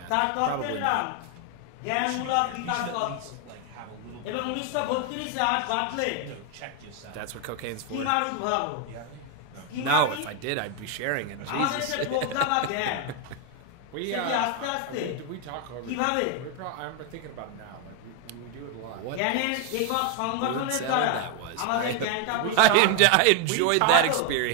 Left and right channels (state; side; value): different; both; correlation 0.01